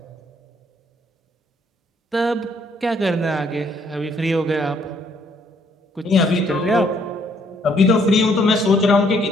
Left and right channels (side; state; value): both; normal; correlation 0.67